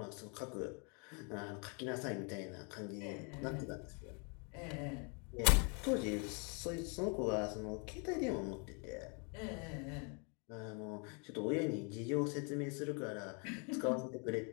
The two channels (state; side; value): quieter; right; 35.5 dB